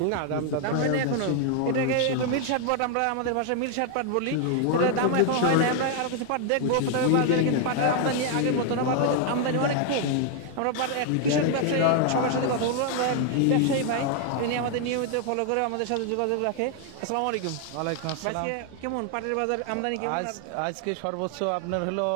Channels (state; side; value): different; both; correlation 0.00